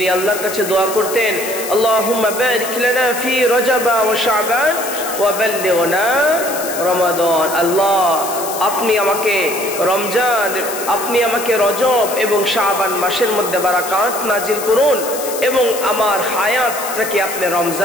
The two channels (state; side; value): noise; left; hiss, 8 dB below the sound